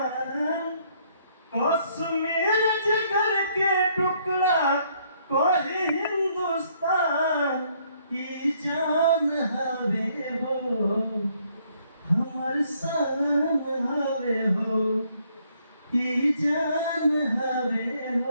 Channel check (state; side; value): inverted; both; correlation -0.68